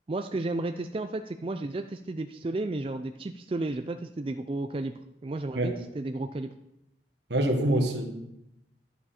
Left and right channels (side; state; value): both; normal; correlation 0.66